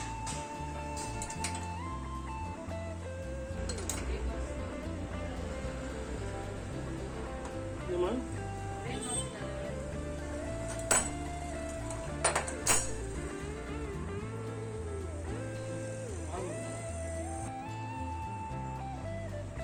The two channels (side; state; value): both; identical; correlation 1.00